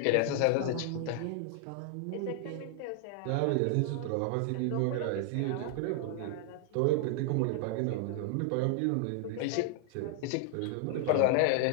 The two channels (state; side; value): different; both; correlation 0.00